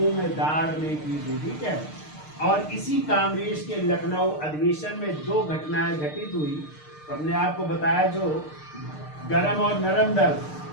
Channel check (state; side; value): late; right; 6.6 ms